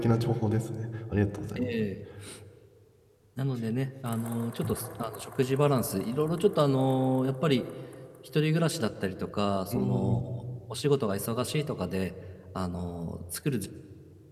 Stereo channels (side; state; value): both; identical; correlation 1.00